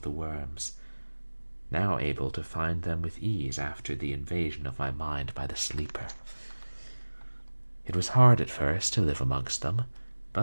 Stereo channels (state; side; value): inverted; both; correlation -1.00